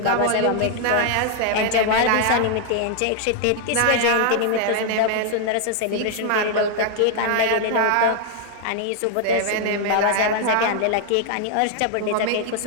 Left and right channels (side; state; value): both; different; correlation 0.00